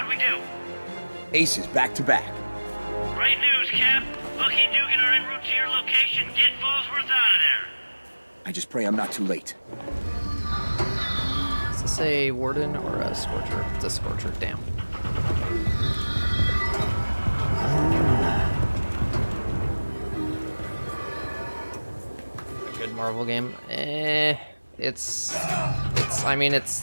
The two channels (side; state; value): both; inverted; correlation -1.00